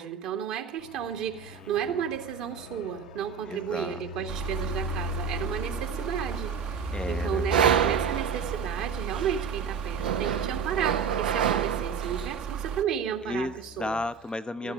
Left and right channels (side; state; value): left; quieter; 6.3 dB